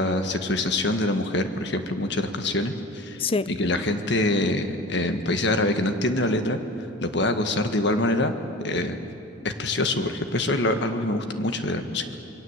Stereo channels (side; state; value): both; normal; correlation 0.36